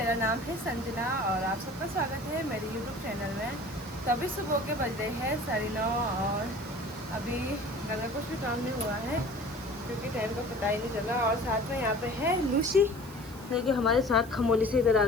नाम है संजना और आप सबका स्वागत है मेरे यूट्यूब चैनल में। तो अभी सुबह के बज रहे हैं 9:30 और अभी घर में कुछ भी काम नहीं हुआ है क्योंकि टाइम का पता ही नहीं चला। और साथ में यहाँ पे है लूसी जो कि हमारे साथ खमोली से इधर आ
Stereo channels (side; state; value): right; noise; hiss, 21 dB below the sound